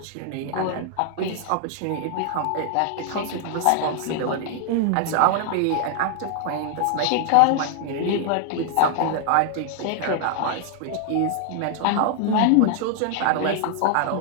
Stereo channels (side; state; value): both; different; correlation 0.00